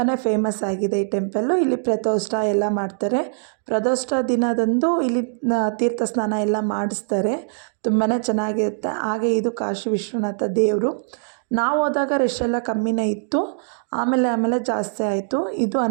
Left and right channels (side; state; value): left; silent; digital silence